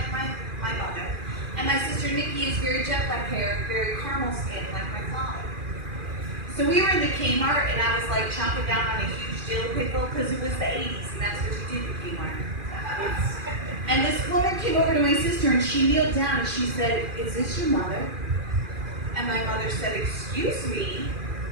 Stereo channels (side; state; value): left; late; 2.4 ms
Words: my mother. And my sister Nikki is very jet-black hair, very caramel-skinned like my father. So we were in the Kmart, and I was like chomping down on a huge dill pickle because it was the 80s, and that's what you did in Kmart. And this woman came over to my sister, and she kneeled down, and she said, "Is this your mother?" And my mother said, "Excuse me."